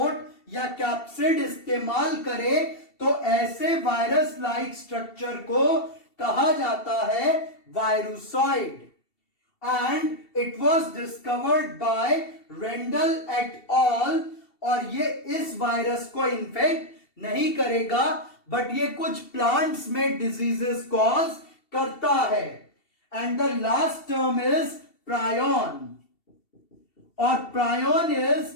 या कैप्सिड इस्तेमाल करे, तो ऐसे वायरस लाइक स्ट्रक्चर को कहा जाता है virusoid. And it was discovered by Randall et al, और ये इस वायरस को इन्फेक्ट नहीं करेगा, बट ये कुछ प्लांट्स में डिजीजेस कॉज करता है। And the last term is prion, और प्रायोन इज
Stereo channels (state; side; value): late; right; 2.7 ms